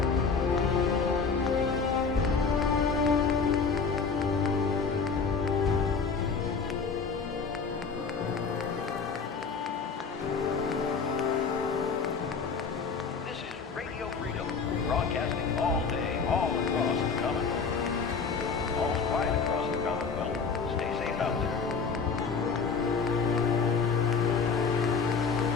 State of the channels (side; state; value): right; quieter; 5.2 dB